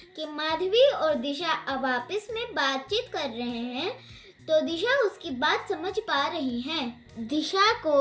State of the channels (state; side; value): identical; both; correlation 1.00